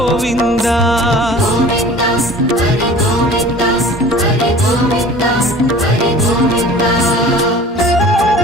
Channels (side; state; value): both; normal; correlation 0.44